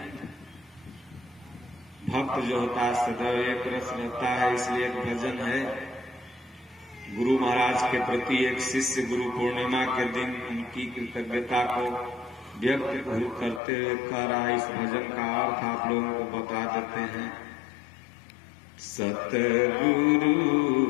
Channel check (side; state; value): right; drops out; at 13.6 s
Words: भक्त जो होता है सदैव एक रस रहता है। इसलिए एक भजन है गुरु महाराज के प्रति, एक शिष्य गुरु पूर्णिमा के दिन उनकी कृतज्ञता को व्यक्त करते हुए कह रहा है। इस भजन का अर्थ आप लोगों को बता देते हैं। सतगुरु